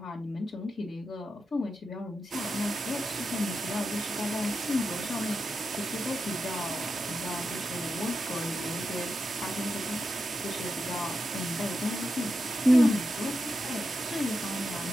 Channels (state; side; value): normal; both; correlation 0.88